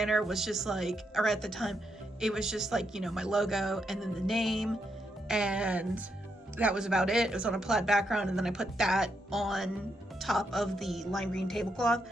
was just like, or at the time, it was just like, my logo and then the name, and that was about it. It was on a plaid background, and then I put that on top of the lime green tablecloth.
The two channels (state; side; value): normal; both; correlation 0.80